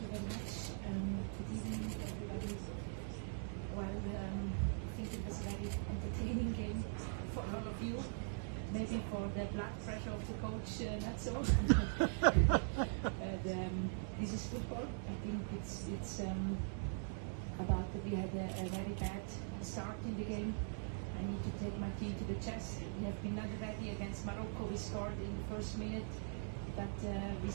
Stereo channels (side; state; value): left; silent; digital silence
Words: you very much. Good evening, everybody. Well, I think it was a very entertaining game for all of you. Maybe for the blood pressure of the coach, not so. But this is football. I think it's about that we had a very bad start in the game. I need to take my team to the chest. We have been not ready against Morocco. We scored in the first minute, but we